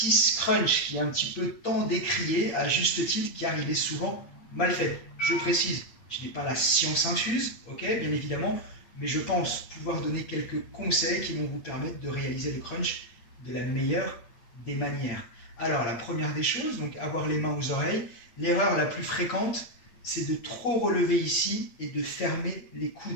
crunch qui est un petit peu tant décrié à juste titre car il est souvent mal fait. Je précise, je n'ai pas la science infuse, ok, bien évidemment, mais je pense pouvoir donner quelques conseils qui vont vous permettre de réaliser le crunch de la meilleure des manières. Alors la première des choses, donc avoir les mains aux oreilles, l'erreur la plus fréquente, c'est de trop relever ici et de fermer les coudes.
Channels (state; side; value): late; right; 8.6 ms